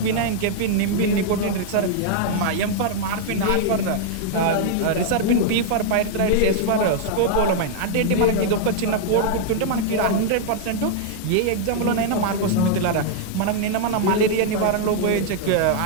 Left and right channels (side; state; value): both; different; correlation -0.01